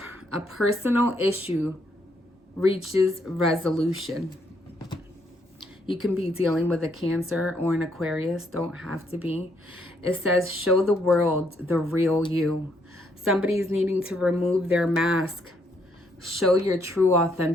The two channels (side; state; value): both; normal; correlation 0.72